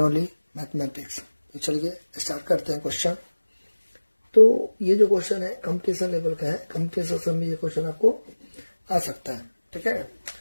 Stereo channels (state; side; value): inverted; both; correlation -1.00